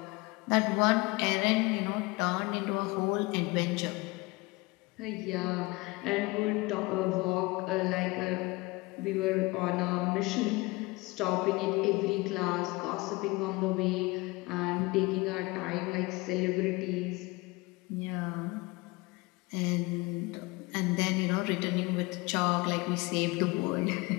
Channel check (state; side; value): quieter; right; 23.5 dB